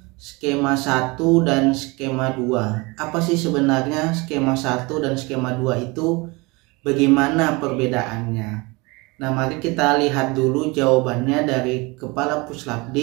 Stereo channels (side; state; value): left; quieter; 25.6 dB